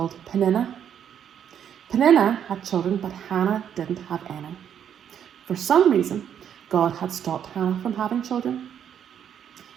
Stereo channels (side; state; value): left; quieter; 9.0 dB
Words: Peninnah. Peninnah had children, but Hannah didn't have any. For some reason, God had stopped Hannah from having children.